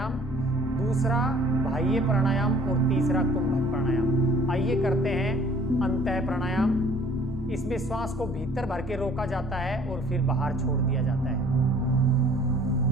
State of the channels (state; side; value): noise; left; hum, 14 dB below the sound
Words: दूसरा बाह्य प्राणायाम और तीसरा कुंभक प्राणायाम। आइए करते हैं अंतः प्राणायाम। इसमें श्वास को भीतर भर के रोका जाता है और फिर बाहर छोड़ दिया जाता है।